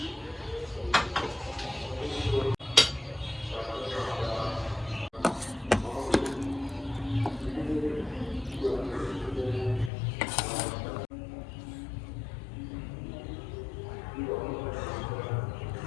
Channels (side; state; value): right; drops out; at 9.9 s